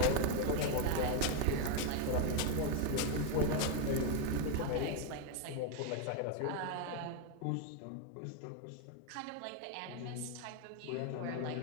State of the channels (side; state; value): both; different; correlation 0.01